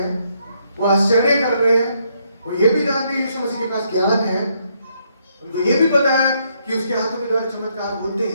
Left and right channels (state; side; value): inverted; both; correlation -0.74